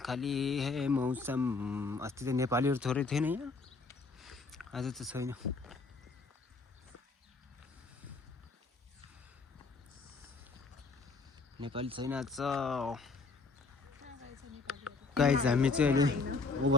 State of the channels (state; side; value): quieter; right; 4.2 dB